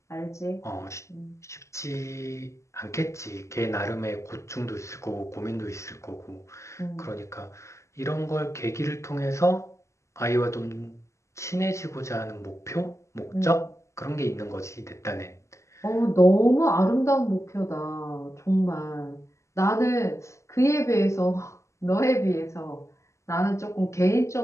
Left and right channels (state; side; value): late; right; 0.14 ms